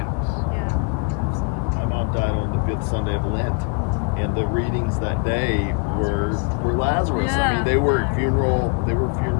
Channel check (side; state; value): right; quieter; 35.6 dB